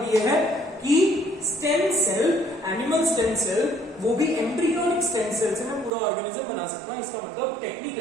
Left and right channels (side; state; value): left; drops out; at 5.9 s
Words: ये है कि stem cell, animal stem cell, वो भी एम्ब्रियोनिक स्टेम सेल से मैं पूरा ऑर्गेनिज्म बना सकता हूं। इसका मतलब